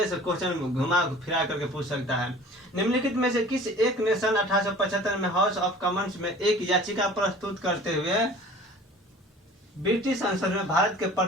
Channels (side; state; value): both; normal; correlation 0.45